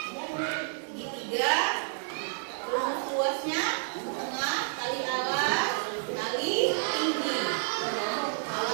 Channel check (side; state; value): left; silent; digital silence